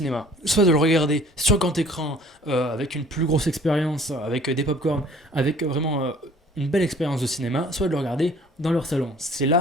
Soit de le regarder sur grand écran avec une plus grosse expérience, avec des pop-corn, avec vraiment une belle expérience de cinéma, soit de le regarder dans leur salon. C'est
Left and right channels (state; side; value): normal; both; correlation 0.53